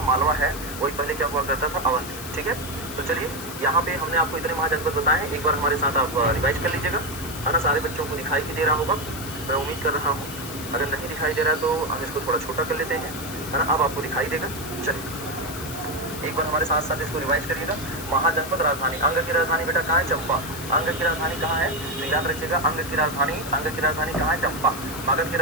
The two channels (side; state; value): left; noise; hiss, 11 dB below the sound